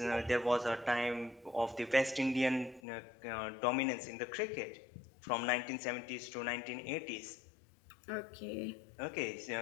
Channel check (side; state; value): right; drops out; at 2.8 s